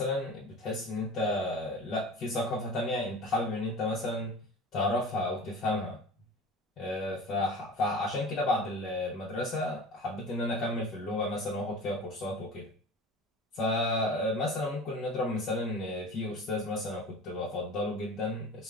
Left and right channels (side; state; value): both; normal; correlation 0.37